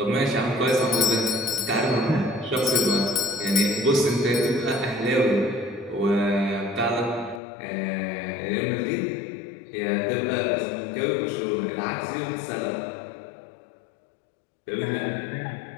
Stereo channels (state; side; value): drops out; right; at 7.4 s